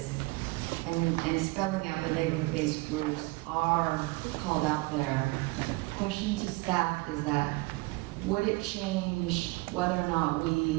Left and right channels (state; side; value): quieter; left; 23.8 dB